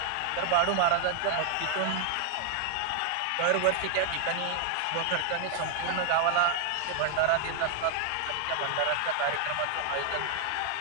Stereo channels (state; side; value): different; both; correlation 0.00